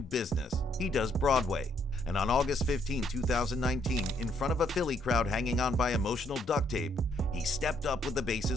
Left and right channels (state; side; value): normal; both; correlation 0.70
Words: business, he does Broadway. And on August 15, 2019, in front of a Philly crowd hanging on by emotional duct tape, he stepped up with the